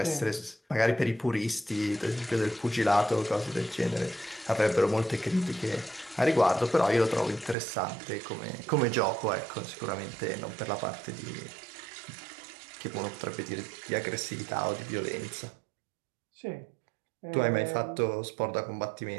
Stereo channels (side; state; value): left; drops out; at 7.6 s